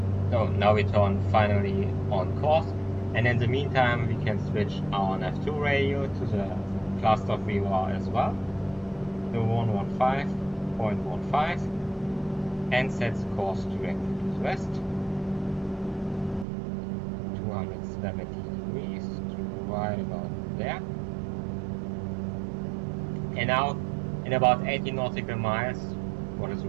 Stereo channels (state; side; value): drops out; left; at 16.4 s